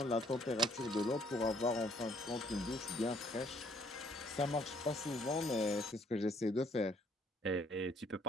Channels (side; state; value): both; normal; correlation 0.65